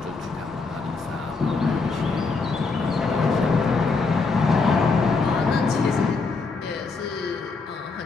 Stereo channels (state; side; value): quieter; right; 4.2 dB